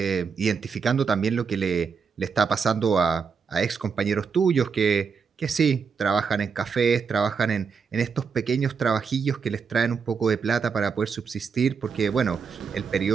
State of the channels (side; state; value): left; quieter; 5.8 dB